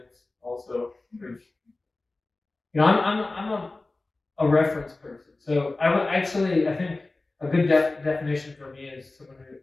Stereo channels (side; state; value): right; quieter; 3.2 dB